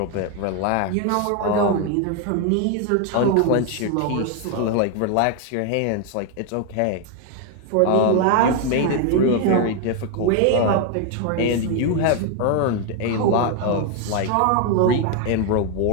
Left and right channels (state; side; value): different; both; correlation 0.01